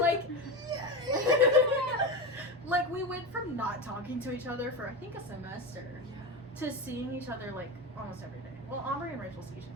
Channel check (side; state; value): both; normal; correlation 0.19